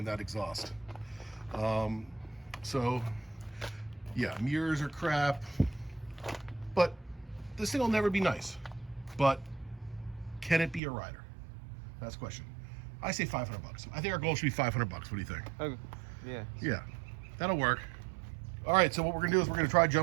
that exhaust. So yeah, mirrors are crap, but this thing will never be nice. But can it be a rider? That's the question. I say $500. I think our goal should be $500. What do you think? Okay. Yeah. Yeah, that'll work. All right, so what we're gonna do is we're gonna try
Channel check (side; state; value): left; drops out; at 10.8 s